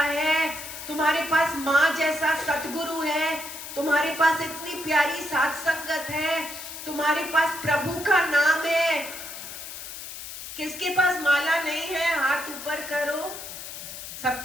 तुम्हारे पास माँ जैसा सतगुरु है, तुम्हारे पास इतनी प्यारी साथ संगत है, तुम्हारे पास प्रभु का नाम है। किसके पास माला नहीं है? हाथ ऊपर करो।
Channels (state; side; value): noise; left; hiss, 10 dB below the sound